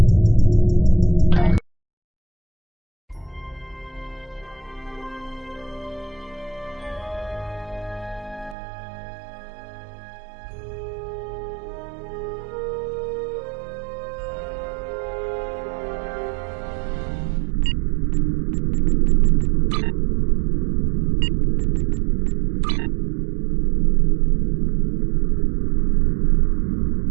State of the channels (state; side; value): drops out; left; at 8.6 s